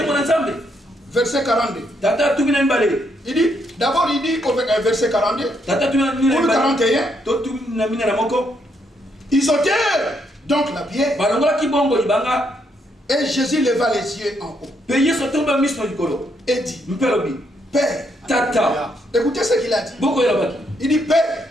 Verset 42. Il dit, d'abord il dit au verset 42, ou 41, ils ôtèrent donc la pierre, et Jésus leva les yeux en haut et dit, Père, Tata, écoutez ce qu'il a dit. Il dit, Père,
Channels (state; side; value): normal; both; correlation 0.75